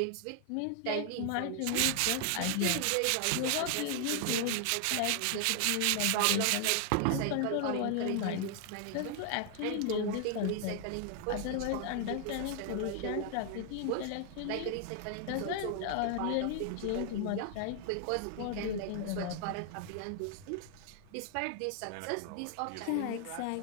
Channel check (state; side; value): different; both; correlation 0.00